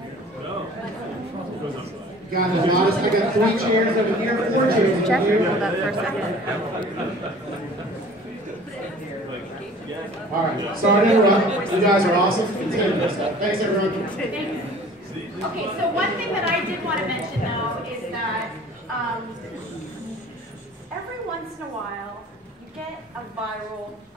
God, I got 3 chairs over here, 4 chairs over here. Hold up for a second. All right, sorry to interrupt. You guys are awesome. Continue. Thanks, everyone. Okay, so one thing that I did want to mention, though, is that every once in a while, you get a viral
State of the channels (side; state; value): both; normal; correlation 0.47